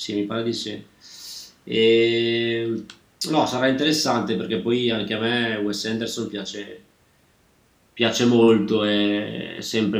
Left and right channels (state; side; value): identical; both; correlation 1.00